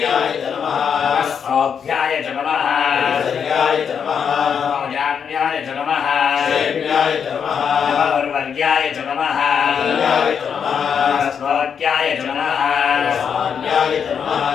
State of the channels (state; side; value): quieter; right; 7.2 dB